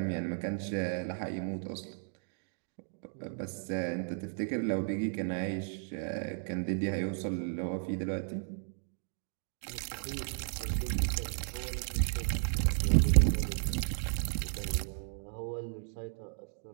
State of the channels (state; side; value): silent; left; digital silence